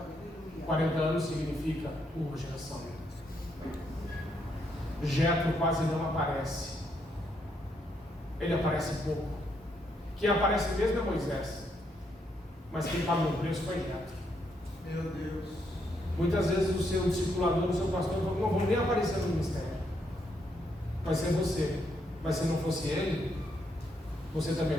40 anos significa uma geração. Jetro quase não aparece. Ele aparece pouco. Quem aparece mesmo é Moisés. Mas quem pagou o preço foi Jetro. Meu Deus. Muitas vezes o seu discipulador, o seu pastor, não vão nem aparecer no ministério. Vai ser você. Mas se não fosse ele, você também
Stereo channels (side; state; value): both; normal; correlation 0.76